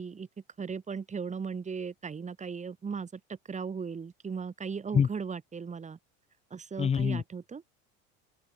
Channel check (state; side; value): normal; both; correlation 0.69